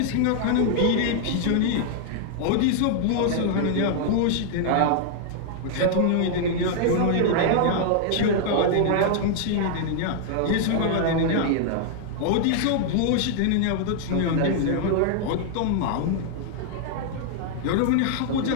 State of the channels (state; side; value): different; both; correlation 0.00